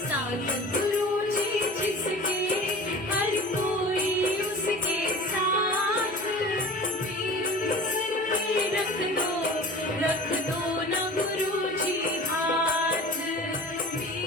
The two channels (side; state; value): both; normal; correlation 0.39